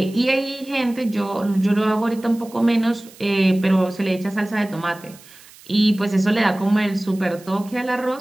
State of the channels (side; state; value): right; noise; hiss, 23 dB below the sound